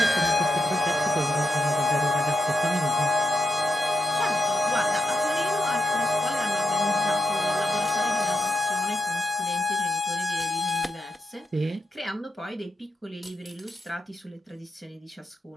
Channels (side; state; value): both; normal; correlation 0.85